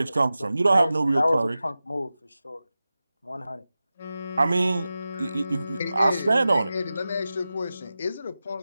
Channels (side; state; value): both; inverted; correlation -0.94